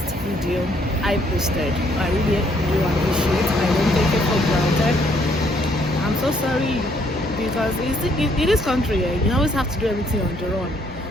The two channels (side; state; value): both; normal; correlation 0.68